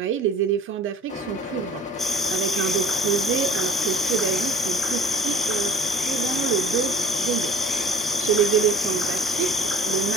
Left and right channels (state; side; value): normal; both; correlation 0.50